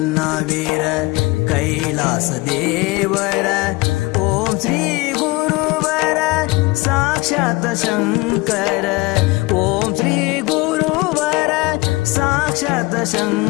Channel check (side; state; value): right; quieter; 22.9 dB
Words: कैलास देवर ओम श्री गुरुवर साक्षात शंकर ओम श्री गुरुवर साक्षात